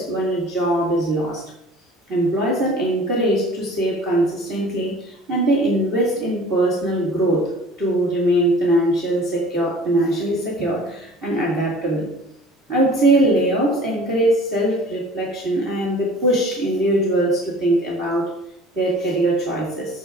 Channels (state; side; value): normal; both; correlation 0.46